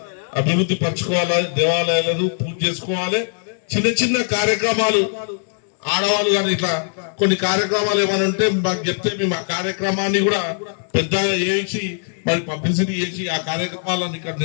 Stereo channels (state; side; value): silent; right; digital silence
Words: అభివృద్ధి పరచుకోవాలి, దేవాలయాలను పూజ చేసుకోవాలి. చిన్న కార్యక్రమాలు ఆడవాళ్ళు కానీ ఇట్లా కొన్ని కార్యక్రమాలు ఏమైనా ఉంటే మాకు చెప్తే మేము ఆ కార్యక్రమాన్ని కూడా పెద్దగా చేసి మరి పబ్లిసిటీ చేసి ఆ కార్యక్రమాలను ఇక్కడ